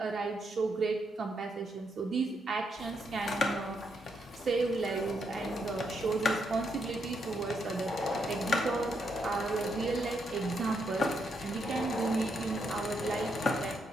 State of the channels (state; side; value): normal; both; correlation 0.79